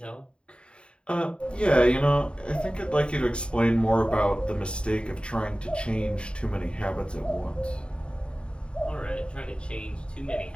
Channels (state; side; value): late; right; 0.054 ms